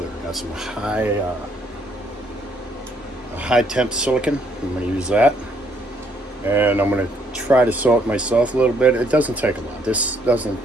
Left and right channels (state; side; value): normal; both; correlation 0.68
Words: Got some high temp silicon. I'm going to use that. And I'm going to try to sew it myself a little bit. It doesn't take a lot. This doesn't